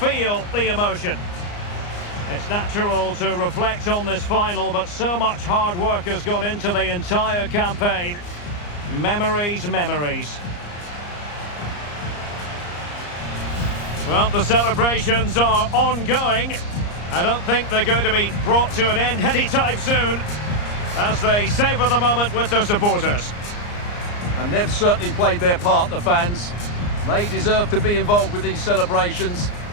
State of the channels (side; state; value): right; late; 34 ms